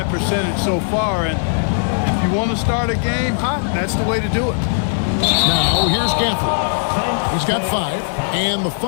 percentage so far, and if you want to start a game hot, that's the way to do it. Now here's Gafford. He's got 5, and the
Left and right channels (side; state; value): right; silent; digital silence